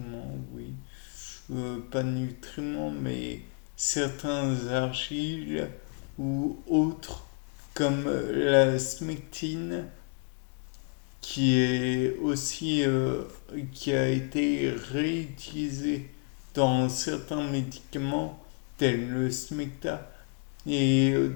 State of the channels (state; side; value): quieter; right; 39.4 dB